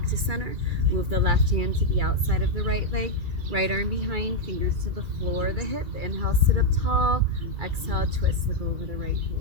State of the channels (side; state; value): left; late; 2.3 ms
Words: to center. Move the left hand to the outside of the right leg. Right arm behind, fingers to the floor, the hip. Inhale, sit up tall. Exhale, twist, look over the right